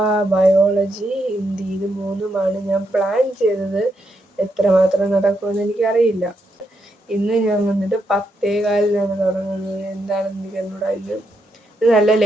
ബയോളജി, ഹിന്ദി, ഇത് മൂന്നുമാണ് ഞാൻ പ്ലാൻ ചെയ്തത്. എത്രമാത്രം നടക്കുമെന്ന് എനിക്കറിയില്ല. ഇന്ന് ഞാൻ വന്നിട്ട് 10:15 തുടങ്ങുന്നത്. എന്താണെന്ന് എനിക്ക് എന്നോട് ഇത് നല്ല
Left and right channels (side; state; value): both; normal; correlation 0.80